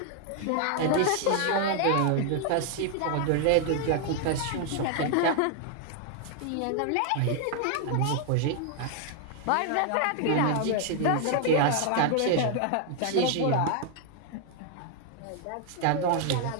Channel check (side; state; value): both; different; correlation 0.00